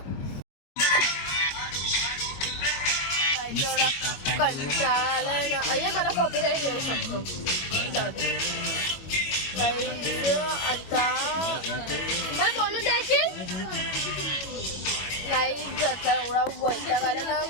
कंटाळाय ना. अय्या मला कॉपीराईट येऊ शकतो. जाऊ दे आता मला बोलू द्यायची. काहीच आता एवढा वैताग आला ना.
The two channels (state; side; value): late; right; 21 ms